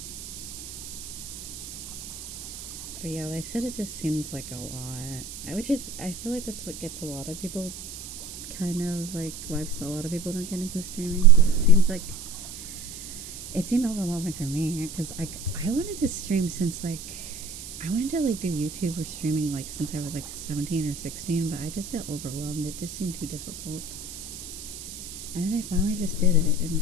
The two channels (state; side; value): noise; right; hiss, 11 dB below the sound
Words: But yeah, they said it just seems like a lot, which is, I feel like that's what gets a lot of people kind of like why a lot of people don't get into streaming, because it seemed overwhelming for me, because I wanted to stream since like I wanted to like do YouTube or streaming like since I was like 17 or 16, but I just got overwhelmed. It just seemed too difficult, and then I finally just did it in